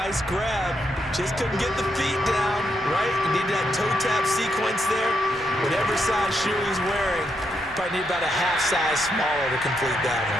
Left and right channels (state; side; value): normal; both; correlation 0.79